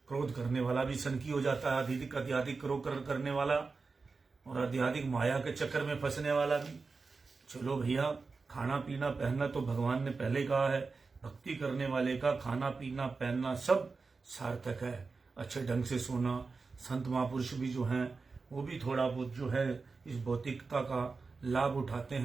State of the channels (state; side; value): quieter; left; 4.3 dB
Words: क्रोध करने वाला भी सनकी हो जाता है, अत्यधिक क्रोध करने वाला और अत्यधिक माया के चक्कर में फंसने वाला भी। चलो भैया, खाना पीना पहनना तो भगवान ने पहले ही कहा है, भक्ति करने वाले का खाना पीना पहनना सब सार्थक है। अच्छे ढंग से सोना, संत महापुरुष भी जो हैं वो भी थोड़ा बहुत जो है इस भौतिकता का लाभ उठाते